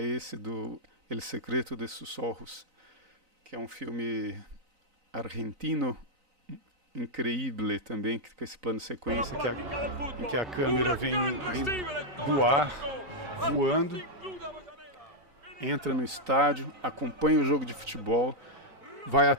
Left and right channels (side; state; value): left; late; 3.9 ms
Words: do El Secreto de sus Ojos, que é um filme argentino increíble também, com esse plano de sequência em que a câmera vem do ar, voando, entra no estádio, acompanha o jogo de futebol, vai